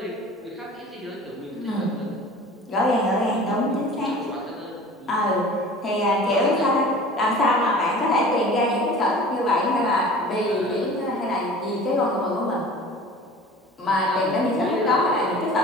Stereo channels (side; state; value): both; normal; correlation 0.42